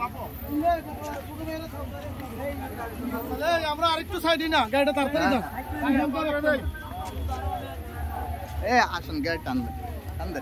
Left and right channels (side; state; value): both; identical; correlation 1.00